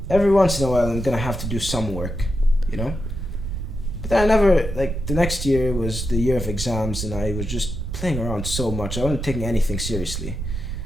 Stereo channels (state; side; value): noise; right; rumble, 5 dB below the sound